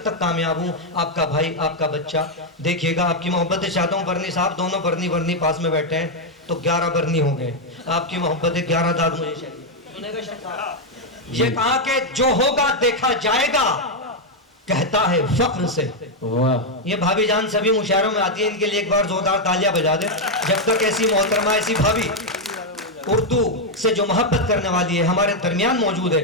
तक कामयाब हूँ, आपका भाई आपका बच्चा। देखिएगा, आपकी मोहब्बत चाहता हूँ। बरनी साहब दोनों बरनी पास में बैठे हैं तो 11 बरनी हो गए। आपकी मोहब्बत 11 दाद मुझे चाहिए। ये कहा कि जो होगा देखा जाएगा, कहता है फख्र से। वाह, ये भाभी जान सभी मुशायरों में आती है, इनके लिए एक बार जोरदार तालियां बजा दे। जब तक ऐसी मोहतरमा, ऐसी भाभी उर्दू से जो मोहब्बत करने वाली है हमारे दरमियान मौजूद है,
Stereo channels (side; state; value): both; normal; correlation 0.01